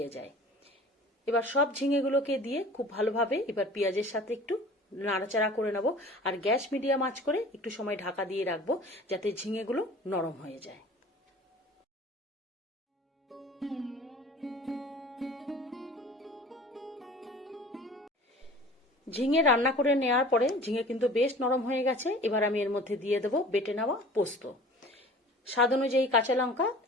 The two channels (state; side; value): normal; both; correlation 0.44